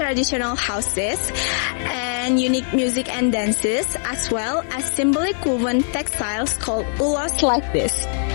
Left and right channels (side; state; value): right; silent; 65 dB below the other